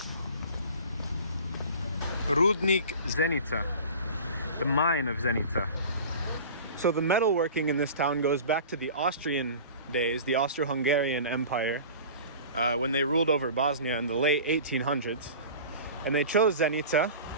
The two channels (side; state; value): both; inverted; correlation -0.39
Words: Rudnik Zenica, the mine of Zenica. So the metalworking in this town goes back to the Austrian days, the Austro-Hungarian Empire, when they ruled over Bosnia in the late 1800s. And they chose Zenica